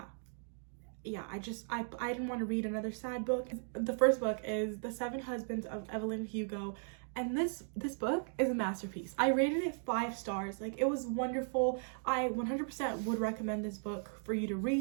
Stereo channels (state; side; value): silent; left; 53 dB below the other